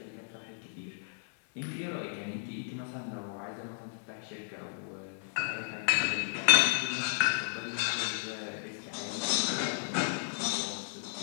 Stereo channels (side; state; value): right; silent; 55 dB below the other